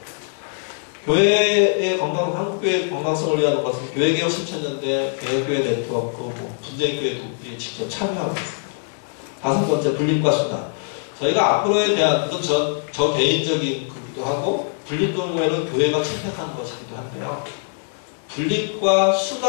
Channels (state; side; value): silent; right; 64 dB below the other